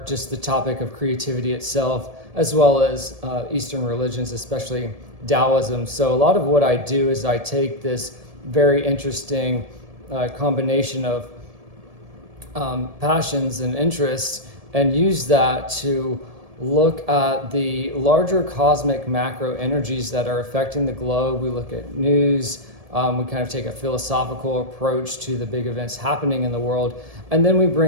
just the topic of creativity itself, as well as Eastern religions, especially Taoism. So a lot of what I do is I take this very interesting combination of passions and interests and use that to look at the larger cosmic macro energies that are affecting the globe. We look at news. We kind of take a philosophical approach to the big events happening in the world, and then we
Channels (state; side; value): late; left; 1.7 ms